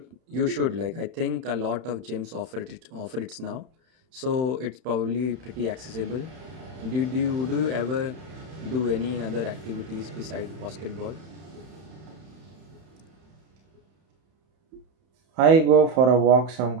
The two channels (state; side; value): late; left; 31 ms